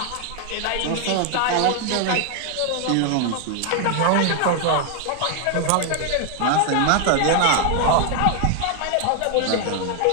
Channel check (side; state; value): both; different; correlation 0.00